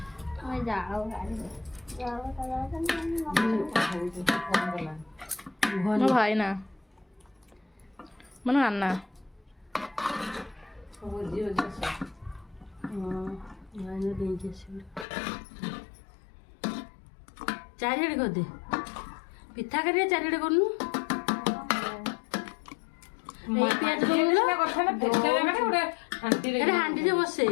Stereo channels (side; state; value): right; drops out; at 15.1 s